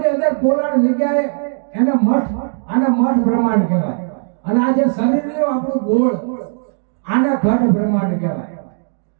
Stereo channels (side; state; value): left; silent; digital silence